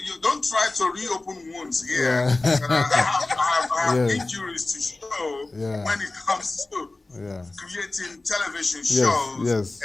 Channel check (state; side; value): quieter; right; 3.1 dB